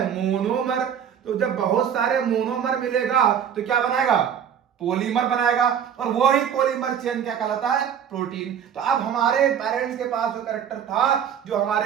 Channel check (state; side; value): quieter; left; 8.5 dB